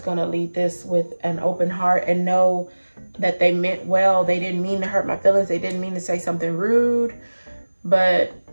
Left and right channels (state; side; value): inverted; both; correlation -1.00